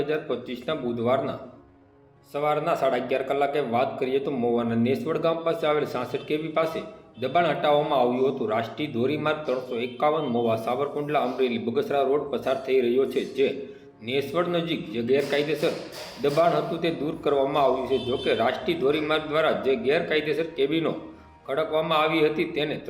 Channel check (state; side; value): identical; both; correlation 1.00